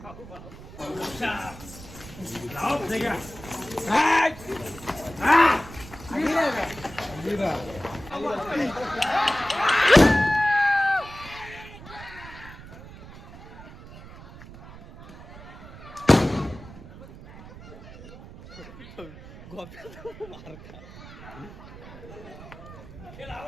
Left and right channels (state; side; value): noise; right; rumble, 16 dB below the sound